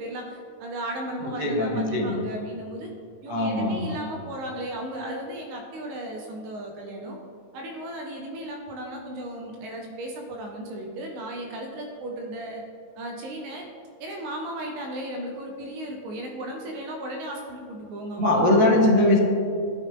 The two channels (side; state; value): left; late; 19 ms